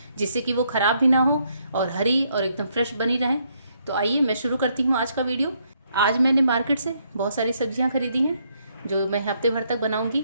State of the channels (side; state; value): both; inverted; correlation -0.73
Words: जिससे कि वो ख़राब भी ना हो और हरी और एकदम फ्रेश बनी रहें। तो आइए मैं शुरू करती हूँ आज का वीडियो। आज मैंने मार्केट से बहुत सारी सब्जियाँ खरीदी हैं जो मैं हफ्ते भर तक बनाऊंगी।